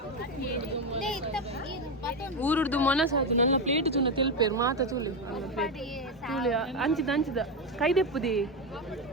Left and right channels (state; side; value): normal; both; correlation 0.10